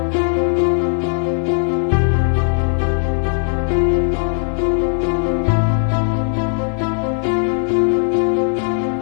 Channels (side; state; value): right; silent; digital silence